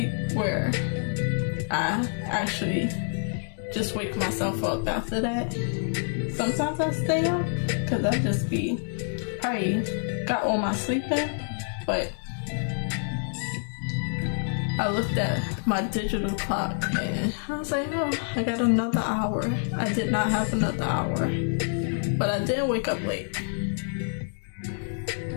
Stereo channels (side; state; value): right; silent; 60 dB below the other